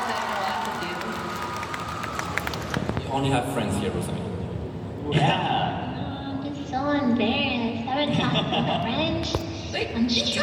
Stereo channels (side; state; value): both; identical; correlation 1.00